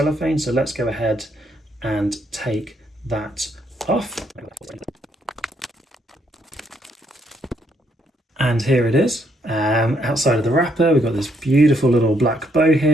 So let's go ahead and take that off. And here it is. Outside of the wrapper, we've got this beautiful little black bow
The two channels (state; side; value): normal; both; correlation 0.73